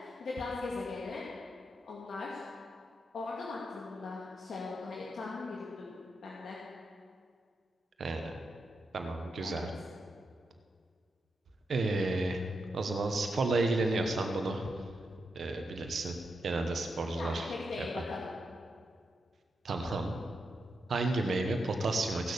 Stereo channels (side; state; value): both; normal; correlation 0.85